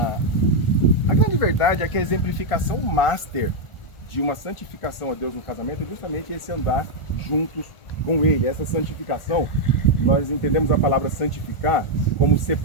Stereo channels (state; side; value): late; right; 1.4 ms